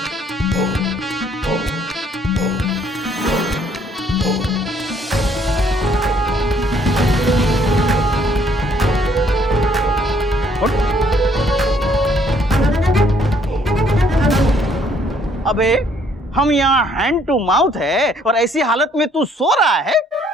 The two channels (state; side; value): normal; both; correlation 0.65